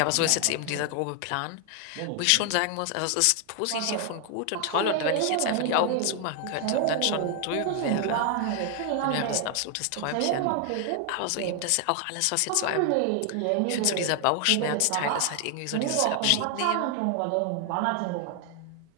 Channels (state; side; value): different; both; correlation 0.00